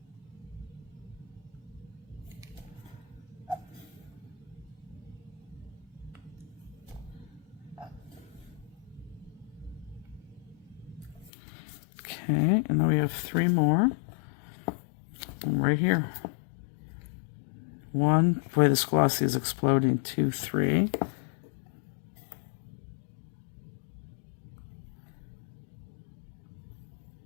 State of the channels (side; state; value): right; drops out; at 11.3 s